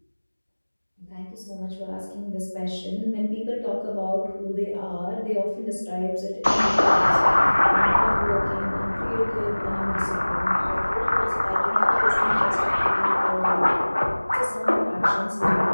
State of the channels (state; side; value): inverted; both; correlation -1.00